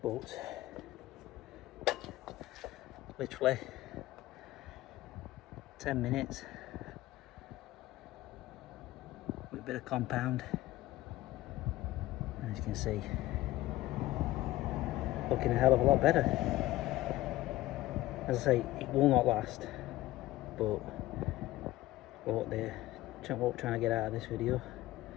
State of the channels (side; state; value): right; quieter; 16.6 dB